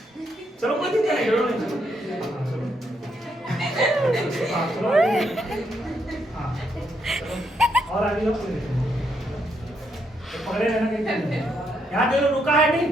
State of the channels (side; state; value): both; normal; correlation 0.77